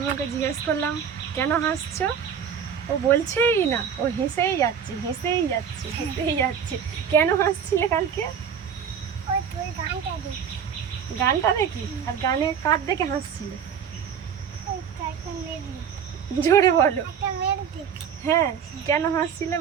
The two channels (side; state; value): left; quieter; 7.6 dB